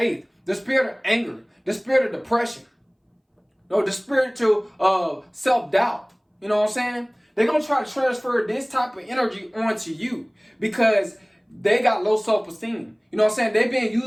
the spirit of anger, the spirit of depression, the spiritual self-doubt. You know what I'm saying? They're going to try to transfer this type of energy onto you because they got low self-esteem. You know what I'm saying? They're being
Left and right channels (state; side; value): identical; both; correlation 1.00